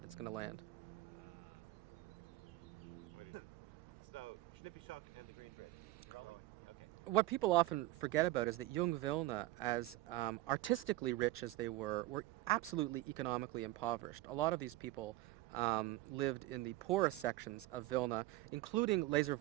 that's going to land. So, Schnippischock and the Green Bridge. Okay. What people often forget about is that Jung Vilna, as artistically rich as they were absolutely economically impoverished. A lot of these people lived in the poorest sections of Vilna, including Lazer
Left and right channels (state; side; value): quieter; left; 17.5 dB